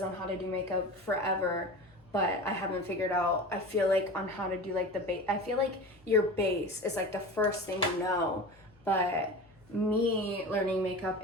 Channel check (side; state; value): left; noise; hum, 29 dB below the sound